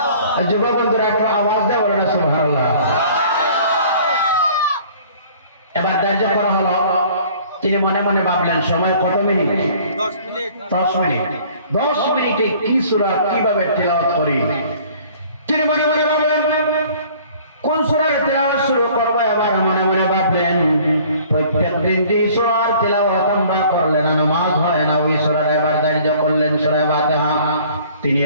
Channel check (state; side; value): inverted; both; correlation -0.52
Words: যুবক বন্ধুরা একটু আওয়াজ দিয়ে বলুন না সুবহানাল্লাহ। এবার ধার্য করা হলো, তিনি মনে মনে ভাবলেন সময় কত মিনিট? 10 মিনিট। 10 মিনিট। 10 মিনিটে কি সূরা কিভাবে তেলাওয়াত করি? তিনি মনে মনে ভাবলেন কোন সূরার তেলাওয়াত শুরু করব। এবার মনে মনে ভাবলেন প্রত্যেকদিন যে সূরার তেলাওয়াত আমরা করলে না নামাজ হয় না, ওই সূরার এবার ধার্য করলেন সূরা ফাতিহা। তিনি